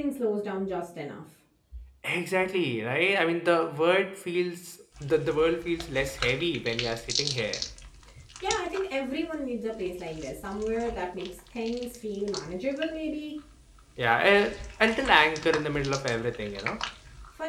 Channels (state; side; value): identical; both; correlation 1.00